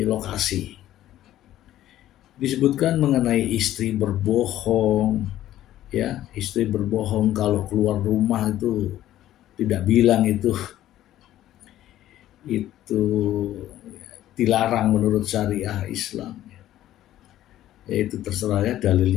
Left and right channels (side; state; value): right; quieter; 13.3 dB